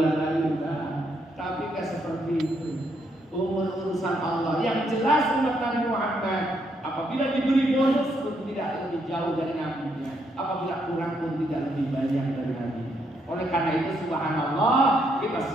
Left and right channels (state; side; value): normal; both; correlation 0.75